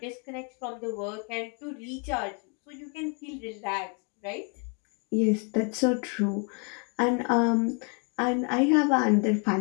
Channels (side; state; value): right; quieter; 36.8 dB